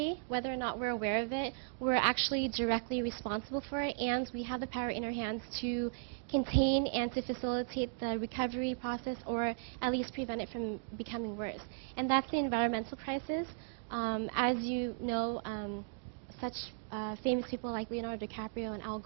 whether or not we're aware of it. We're actually directly responsible for it, and we have the power in our hands to contain and to facilitate the recovery process, or at least prevent it from becoming worse. And that's the environmental crisis. As you know, such famous people like Leonardo DiCaprio and Al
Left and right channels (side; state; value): left; silent; digital silence